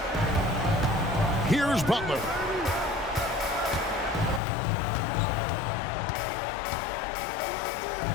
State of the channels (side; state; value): right; drops out; at 4.4 s